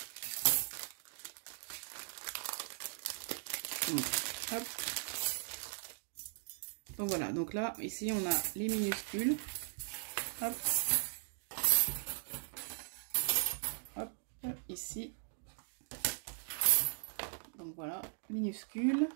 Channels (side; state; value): left; silent; digital silence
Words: Donc, hop. Donc voilà, donc là, ici on a les minuscules. Hop. Hop, ici. Donc voilà, minuscules.